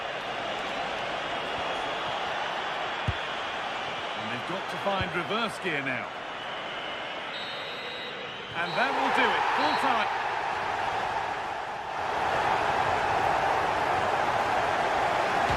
they've got to find reverse gear now. And that will do it, full time.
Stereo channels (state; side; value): identical; both; correlation 1.00